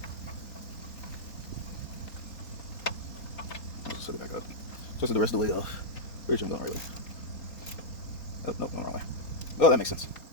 Just set it back up. Twist it the rest of the way off. Pretty sure I'm going right way. Oh, nope, going the wrong way. Oh, that makes sense.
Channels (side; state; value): right; late; 3.9 ms